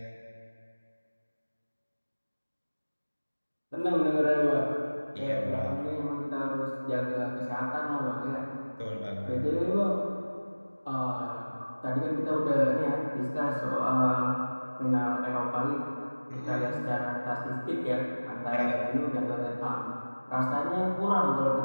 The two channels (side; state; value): both; inverted; correlation -1.00